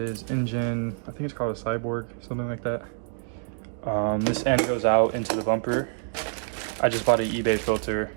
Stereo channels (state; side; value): silent; left; 55 dB below the other